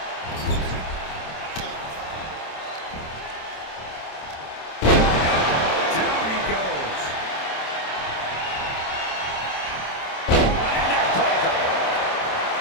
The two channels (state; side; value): late; right; 27 ms